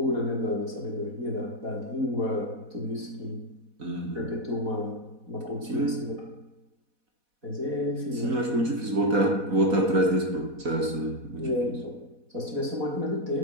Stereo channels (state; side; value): late; left; 4.1 ms